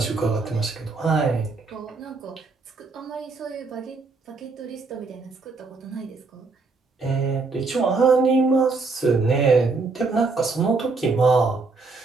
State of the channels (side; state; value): left; quieter; 4.0 dB